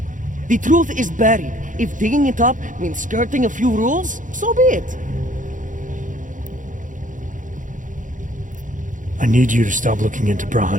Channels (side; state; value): left; late; 0.38 ms